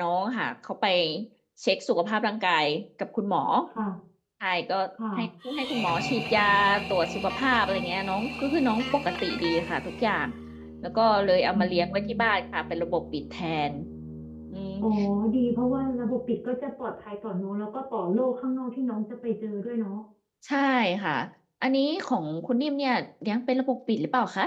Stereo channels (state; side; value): identical; both; correlation 1.00